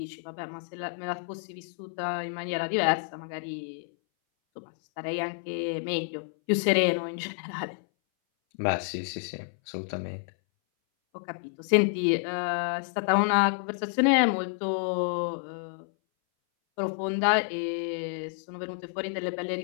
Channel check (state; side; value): silent; right; 58 dB below the other